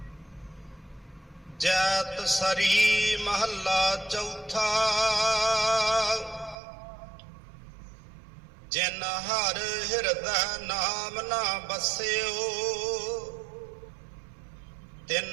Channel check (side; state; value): left; drops out; at 6.6 s